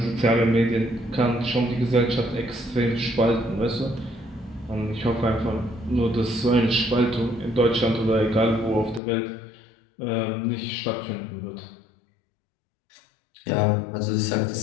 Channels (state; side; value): drops out; right; at 9.0 s